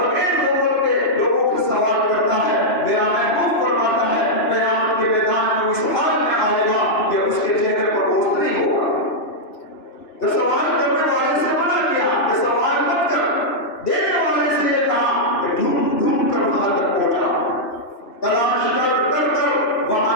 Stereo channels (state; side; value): late; right; 2.8 ms